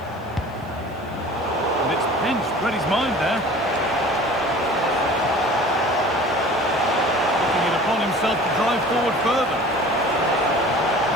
And it's pinched Reddy's mind there. Taking it upon himself to drive forward further.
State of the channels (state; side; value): noise; right; hiss, 30 dB below the sound